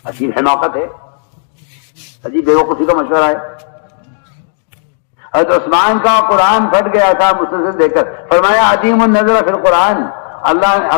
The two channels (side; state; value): right; silent; digital silence